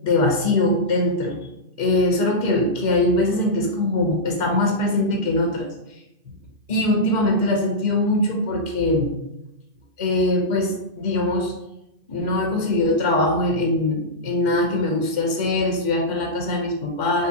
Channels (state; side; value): late; left; 2.4 ms